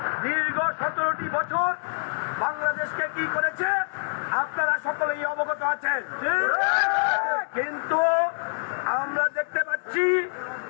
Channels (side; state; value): right; silent; 58 dB below the other